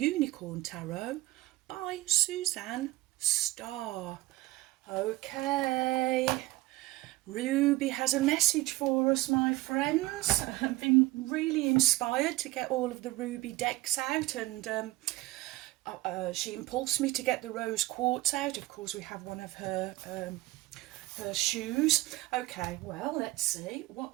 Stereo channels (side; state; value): left; quieter; 18.5 dB